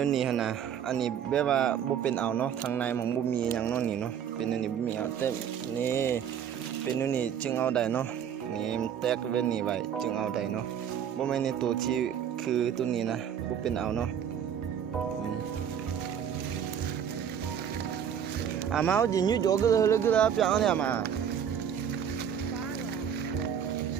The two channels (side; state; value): left; quieter; 8.6 dB